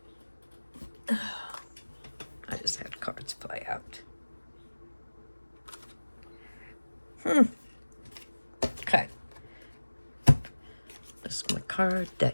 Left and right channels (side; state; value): both; inverted; correlation -1.00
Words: I just had cards play out. Okay. This is my card